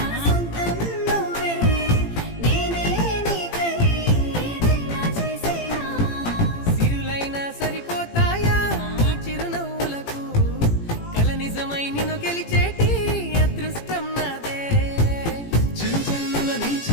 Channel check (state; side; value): late; right; 18 ms